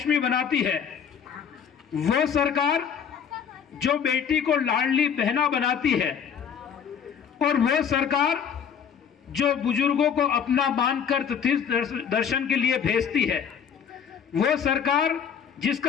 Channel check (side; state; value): right; quieter; 7.6 dB